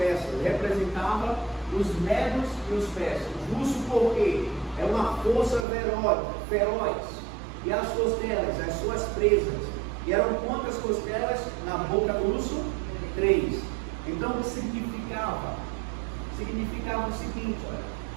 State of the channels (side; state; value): left; drops out; at 5.7 s